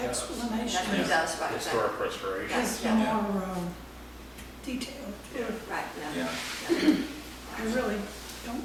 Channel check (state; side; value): identical; both; correlation 1.00